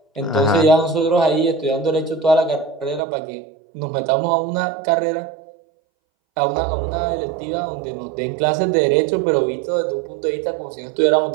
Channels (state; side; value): drops out; left; at 3.0 s